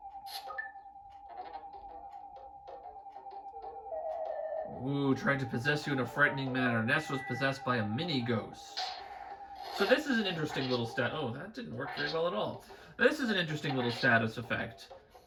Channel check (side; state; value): both; identical; correlation 1.00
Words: Ooh, tried to possess you in a frightening manner. Ness was possessed by a mini-ghost. So this is an interesting little stat. Oh, that didn't work very well at all. This is an interesting little status effect.